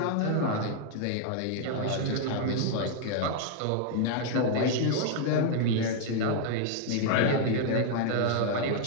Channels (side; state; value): both; different; correlation 0.00